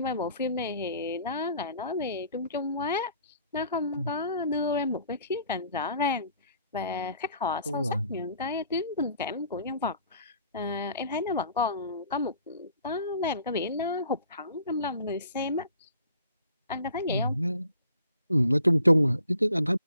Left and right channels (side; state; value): both; inverted; correlation -0.54